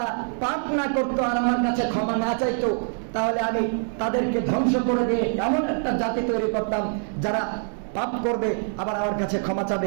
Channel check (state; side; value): silent; left; 62 dB below the other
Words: পাপ না করতো আর আমার কাছে ক্ষমা না চাইতো, তাহলে আমি তাদেরকে ধ্বংস করে দিয়ে এমন একটা জাতি তৈরি করতাম যারা পাপ করবে আবার আমার কাছে ক্ষমা